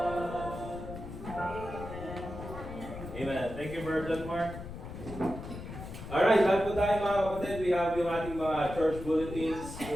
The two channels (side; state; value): left; noise; rumble, 10 dB below the sound